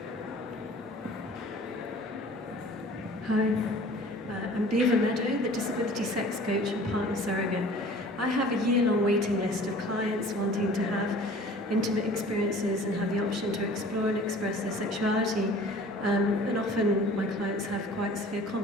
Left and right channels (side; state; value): both; normal; correlation 0.47